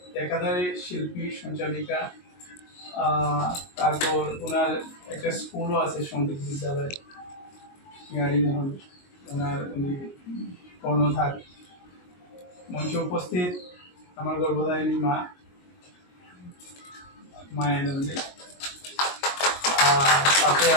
একাধারে শিল্পী সঞ্চালিকা। তারপর ওনার একটা স্কুলও আছে সঙ্গীত বিদ্যালয় মোহন, উনি কর্ণধার। মঞ্চে উপস্থিত আমার গর্ভধারিণী মা মায়ানন্দী। পাশে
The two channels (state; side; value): late; right; 22 ms